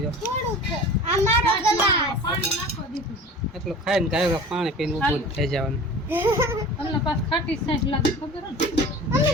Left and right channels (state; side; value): normal; both; correlation 0.39